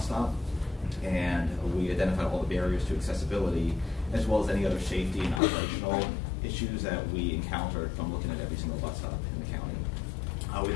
stop. And we identified all the barriers to accessibility as well as any other safety and operational issues that we encountered from looking at every single bus stop in the county. We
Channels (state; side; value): drops out; right; at 5.4 s